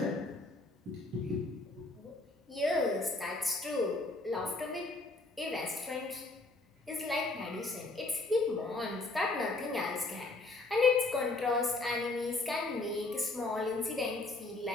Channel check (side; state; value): right; quieter; 3.1 dB